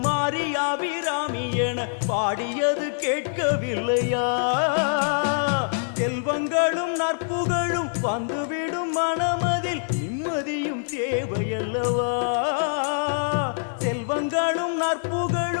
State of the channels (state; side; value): silent; right; 59 dB below the other